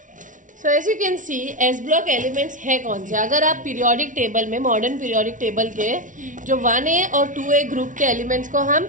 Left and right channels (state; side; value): late; left; 0.37 ms